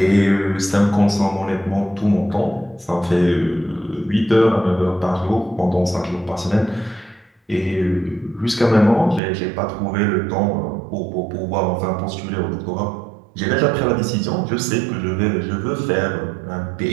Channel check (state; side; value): drops out; left; at 9.2 s